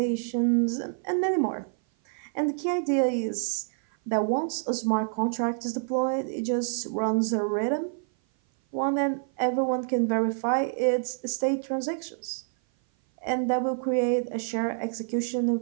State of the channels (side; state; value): left; silent; 56 dB below the other